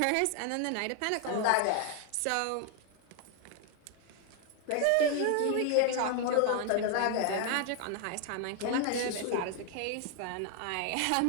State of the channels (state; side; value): different; both; correlation 0.00